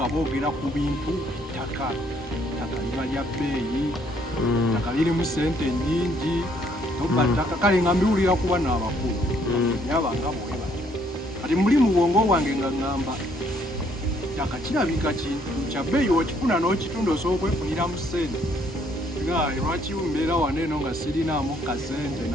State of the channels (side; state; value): both; normal; correlation 0.67